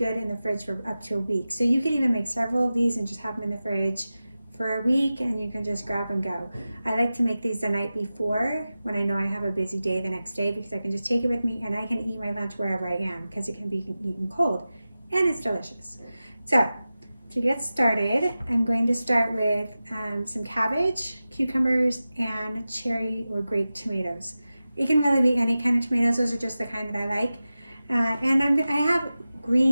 in the fridge for up to a week. So you can even make several of these and just have them in the fridge for a week and you can just grab and go. I like to make these the night before when I know I have a busy day the next day, because I can just take it with me and I can eat my lunch wherever I am because it can be eaten cold and it's delicious. So to get started, I'm going to start with some cabbage, cucumbers, and cherry or grape tomatoes. It can really be any kind of tomatoes. Those are just the kind that I like. And I have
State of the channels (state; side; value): inverted; both; correlation -0.95